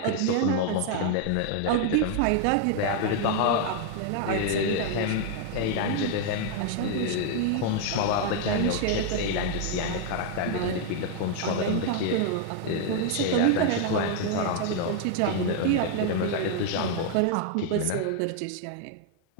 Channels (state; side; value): different; both; correlation 0.00